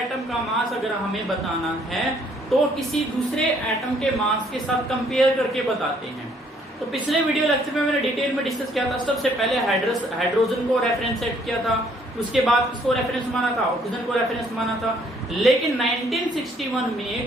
का मास अगर हमें बताना है तो किसी दूसरे एटम के मास के साथ कंपेयर करके बताते हैं। तो पिछले वीडियो लेक्चर में मैंने डिटेल में डिस्कस किया था। सबसे पहले हाइड्रोजन को रेफरेंस सेट किया था, उसके बाद किसको रेफरेंस माना था, ऑक्सीजन को रेफरेंस माना था। लेकिन 1961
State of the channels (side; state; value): both; normal; correlation 0.64